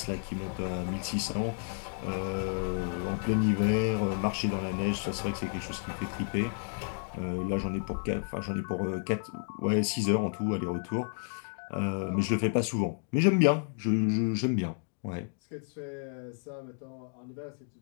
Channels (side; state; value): right; silent; 57 dB below the other